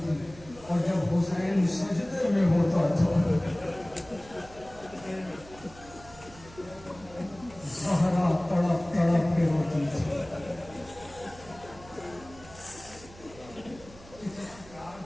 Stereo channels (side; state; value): right; noise; hum, 20 dB below the sound